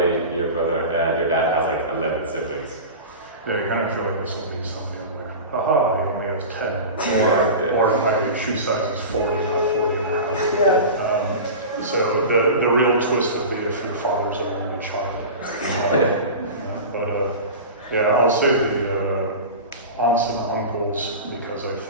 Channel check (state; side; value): inverted; both; correlation -0.31